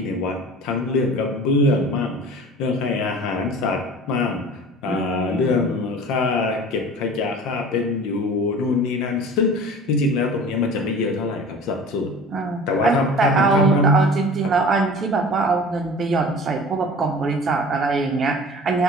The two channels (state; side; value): normal; both; correlation 0.41